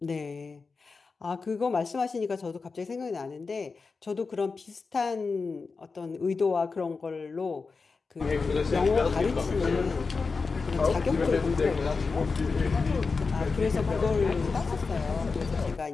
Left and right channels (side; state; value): right; quieter; 4.5 dB